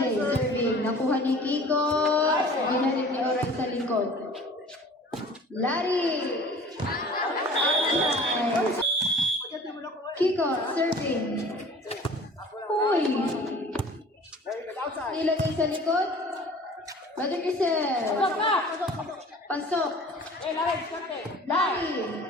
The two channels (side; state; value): both; normal; correlation 0.46